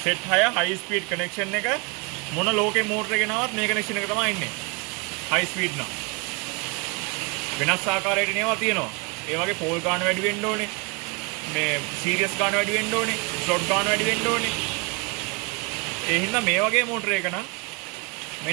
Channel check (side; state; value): left; quieter; 30.3 dB